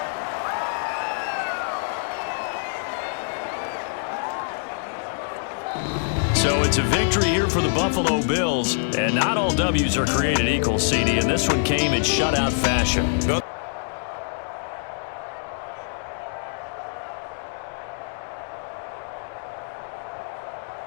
So it's a victory here for the Buffalo Bills, and not all W's are created equal, CD, and this one came in shutout fashion.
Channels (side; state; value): right; silent; digital silence